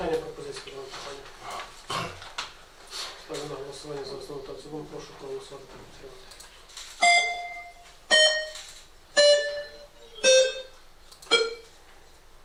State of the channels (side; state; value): both; identical; correlation 1.00